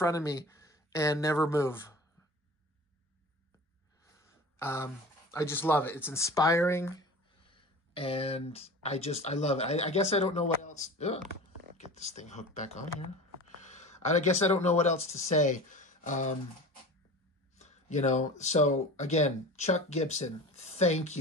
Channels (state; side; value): normal; both; correlation 0.36